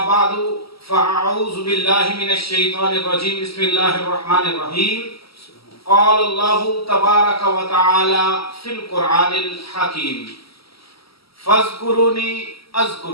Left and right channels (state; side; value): late; right; 0.75 ms